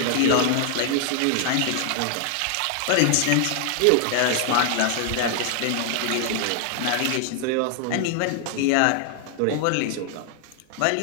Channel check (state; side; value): different; both; correlation 0.00